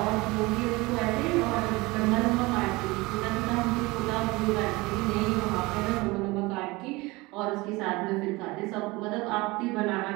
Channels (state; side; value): quieter; left; 22.7 dB